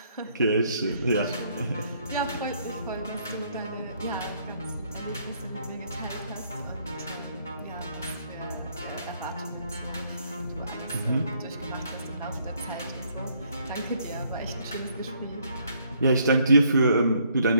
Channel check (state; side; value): inverted; both; correlation -0.68